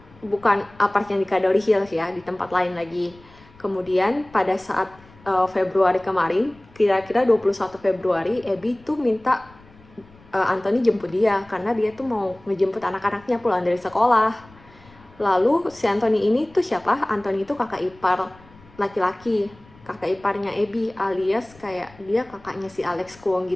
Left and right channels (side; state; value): left; noise; rumble, 25 dB below the sound